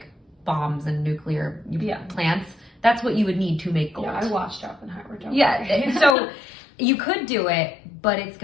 bombs and nuclear plants. That's what you would need to make gold. Yeah, I watched Oppenheimer. So you could do it, but it's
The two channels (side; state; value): right; drops out; at 6.2 s